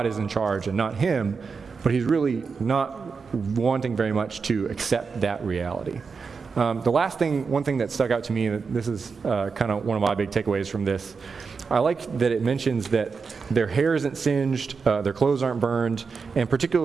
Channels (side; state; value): left; quieter; 5.1 dB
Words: is in charge and not him, but he's really not wanting very much to accept that reality. One thing that stuck out to me, and this is kind of one of my big takeaways from this, I like that it mentions that their hair isn't singed, their clothes aren't burned, and